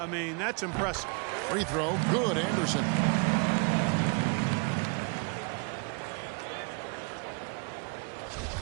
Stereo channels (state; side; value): quieter; left; 34.3 dB